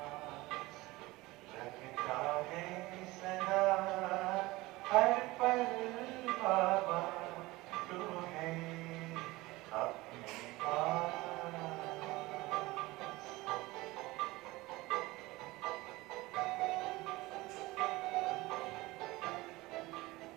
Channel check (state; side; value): quieter; left; 20.4 dB